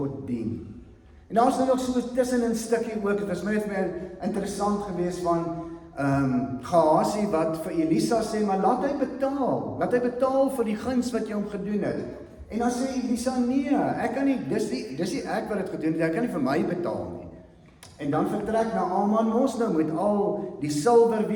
dien. En daar is nog so tussen 'n stukkie ook, het was my interessant geweest van Gehasie wat vir Elisa sê, maar laat hy betaal vir die guns wat jy hom gedoen het. En dan sê Elisa, nee, ek kan nie, dis nie ek wat het gedoen het, ek kan nie vir my betaal nie. En dan vertrek Naaman mos nou met al die silwer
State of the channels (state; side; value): identical; both; correlation 1.00